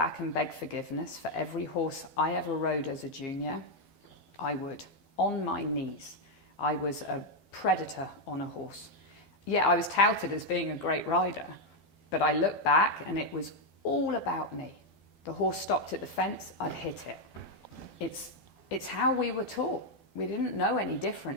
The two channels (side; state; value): right; late; 12 ms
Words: and beg forgiveness for every horse I ever rode as a junior, I would. On my knees. I was a predator on a horse. Yeah, I was touted as being a great rider, but I look back and it was all about me. The horse stopped at the fence, I'd hit it. It's how we were taught. We didn't know any